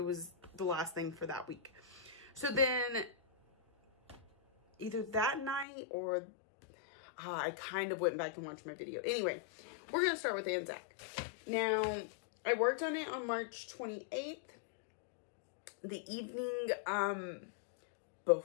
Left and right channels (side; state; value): right; drops out; at 5.7 s